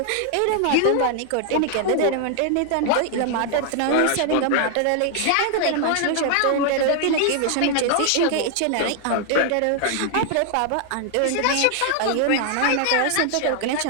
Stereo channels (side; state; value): both; different; correlation 0.00